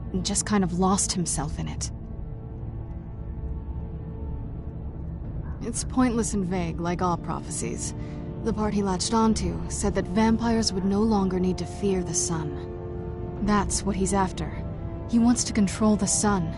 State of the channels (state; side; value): identical; both; correlation 1.00